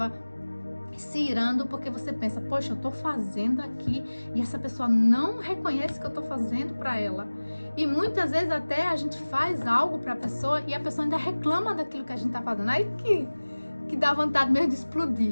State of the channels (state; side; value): inverted; both; correlation -1.00